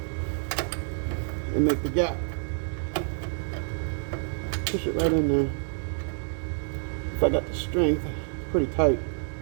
and make the gap. Push it right in there. If I got the strength, pretty tight.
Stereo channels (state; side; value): silent; left; digital silence